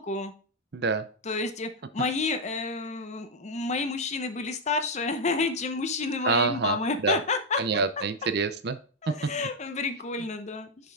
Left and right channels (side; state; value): both; normal; correlation 0.01